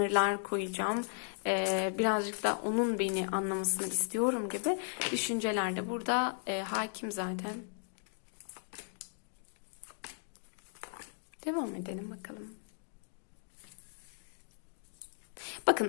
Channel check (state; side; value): silent; right; digital silence